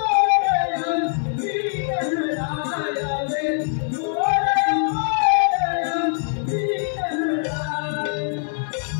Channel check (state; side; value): silent; right; 64 dB below the other